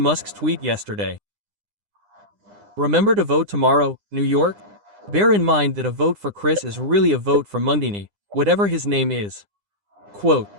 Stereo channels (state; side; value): late; left; 9.9 ms